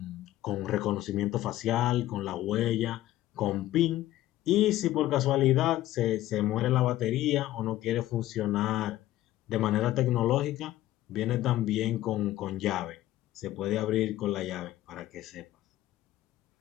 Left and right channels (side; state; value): right; quieter; 14.8 dB